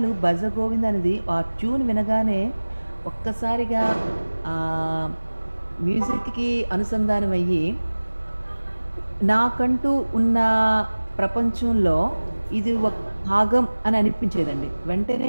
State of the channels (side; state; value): both; inverted; correlation -1.00